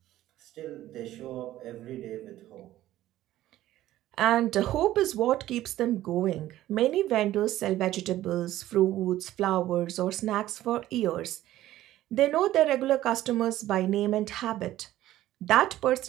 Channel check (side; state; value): left; quieter; 14.3 dB